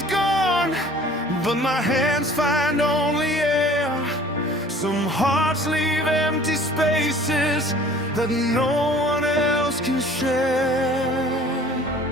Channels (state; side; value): normal; both; correlation 0.50